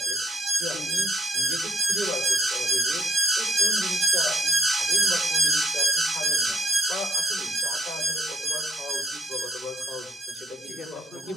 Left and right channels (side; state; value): both; normal; correlation 0.68